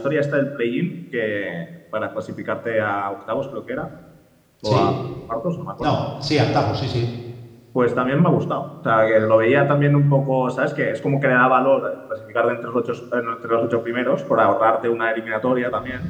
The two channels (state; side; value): identical; both; correlation 1.00